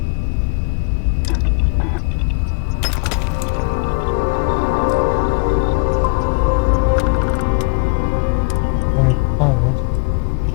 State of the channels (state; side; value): quieter; right; 33.6 dB